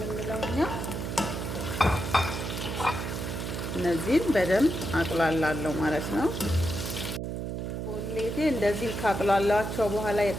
እኛ። እነዚህን በደንብ አቅላላለሁ ማለት ነው። ቁሌቴ እንደዚህ ካቅላላቸው በኋላ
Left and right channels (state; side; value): noise; right; hum, 4 dB below the sound